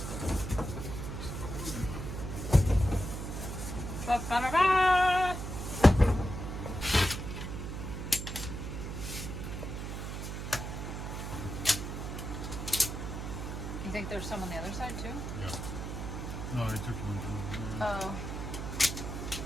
Ba-ba-da-ba. You think there's some on the other side too? Yeah. No, I took one down. Oh.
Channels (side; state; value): right; noise; hum, 5 dB below the sound